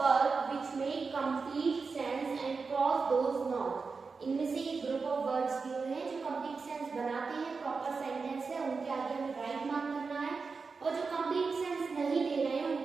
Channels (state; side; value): quieter; left; 4.7 dB